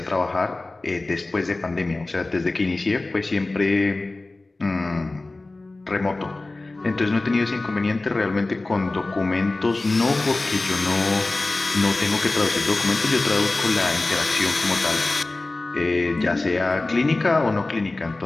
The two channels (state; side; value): quieter; right; 3.1 dB